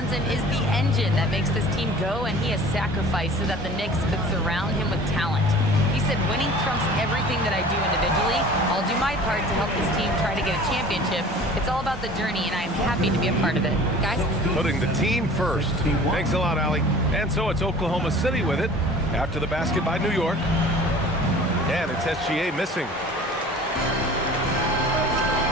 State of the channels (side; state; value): both; normal; correlation 0.44